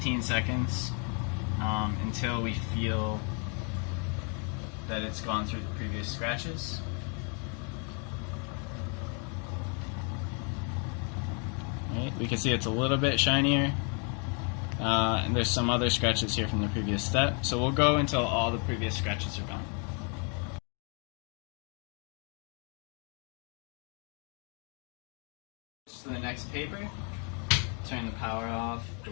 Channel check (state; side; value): quieter; right; 38.2 dB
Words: seconds until we feel that it's gone through the previous scratches. Right, we can see it's a little bit shinier. And there's some other scratches here from the previous step. So we'll go until all the previous scratches are gone. To the next paper, turn the power off, the